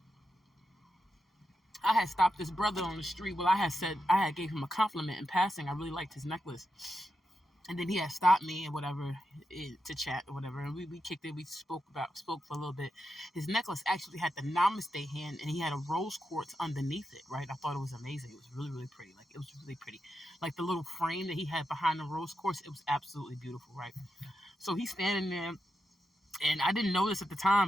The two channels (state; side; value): normal; both; correlation 0.87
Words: I had stopped this brother on the street. Well, I had gave him a compliment in passing. I really liked his necklace. And then he had stopped me and whatever to chat or whatever, and we kicked it. We spoke for a little bit. His necklace actually had the namaste hand, and he had a rose quartz underneath it. Right, I thought it was amazing. It was really really pretty. Like it was really pretty. Like the little frame that he had behind the rose quartz, it was absolutely beautiful. Right. So he's standing there, and I didn't notice at the